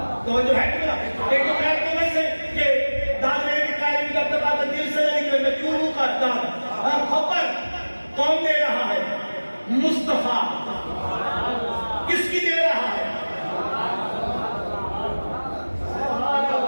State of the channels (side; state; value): both; inverted; correlation -1.00